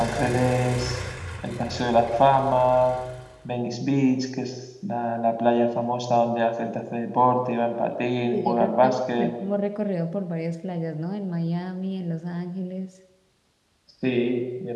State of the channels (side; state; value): both; identical; correlation 1.00